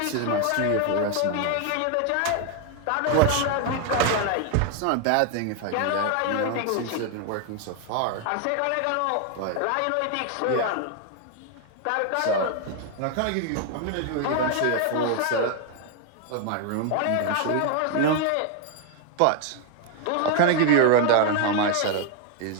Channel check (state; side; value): different; both; correlation 0.01